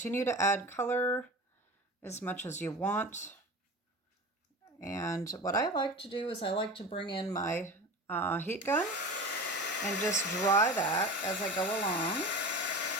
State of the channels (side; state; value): both; normal; correlation 0.32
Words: to add color as much as you want. And what I like to do is I like to bring in my heat gun and just dry that as I go along.